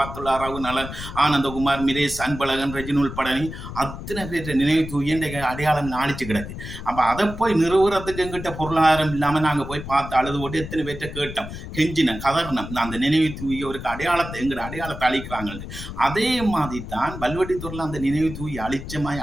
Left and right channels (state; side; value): noise; left; rumble, 10 dB below the sound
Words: ராவு நலன் ஆனந்தகுமார் மிரேஷ் அன்பழகன் ரெஜினுல் பழனி அத்தனை பேர் நினைவு தூக்கி இன்றைக்கு அடையாளம் அழிச்சு கிடக்கு. அப்ப அதை போய் நிறுவுறதுக்கு எங்கிட்ட பொருளாதாரம் இல்லாம நாங்க போய் பார்த்து அழுது போட்டு எத்தனை பேர்ட்ட கேட்டோம், கெஞ்சினம், கதர்ணம். அந்த நினைவு தூவியவருக்கு அடையாளத்தை எங்கிட்ட அடையாளத்தை அழிக்கிறாங்க. அதே மாதிரி தான் வல்வெட்டித்துறையில அந்த நினைவு தூவி